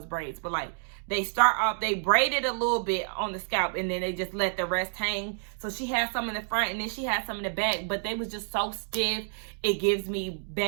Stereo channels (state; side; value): silent; left; digital silence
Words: braids, but like they start off, they braided a little bit on the scalp and then they just let the rest hang. So she had some in the front and then she had some in the back, but they was just so stiff. It gives me